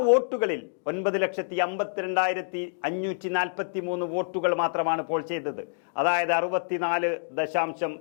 വോട്ടുകളിൽ 9,52,543 വോട്ടുകൾ മാത്രമാണ് പോൾ ചെയ്തത്. അതായത്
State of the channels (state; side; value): silent; right; digital silence